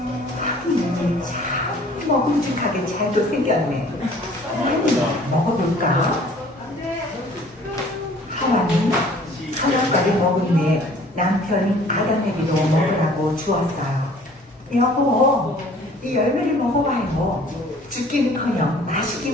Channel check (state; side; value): normal; both; correlation 0.53